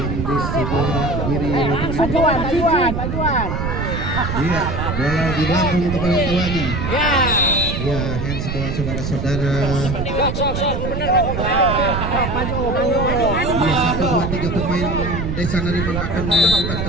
di sebelah kiri lapangan. Pajuan. Iya, bola dilambung kepada kawannya. Ya. Ya, handsball saudara-saudara. Maju. Iya, 1, 2, 3 pemain Desa Marimbang akan melakukan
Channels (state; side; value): noise; right; rumble, 3 dB below the sound